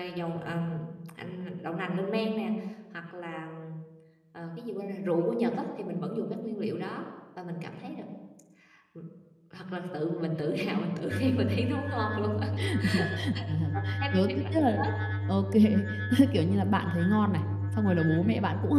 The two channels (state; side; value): identical; both; correlation 1.00